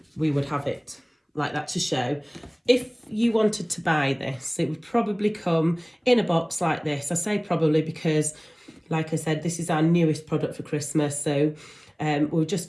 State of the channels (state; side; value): identical; both; correlation 1.00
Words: have it like that to show. If you wanted to buy this, it would probably come in a box like this. I say probably because, like I said, this is our newest product for Christmas. So we're